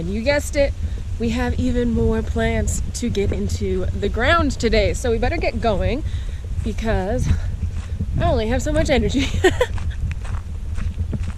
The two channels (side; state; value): both; identical; correlation 1.00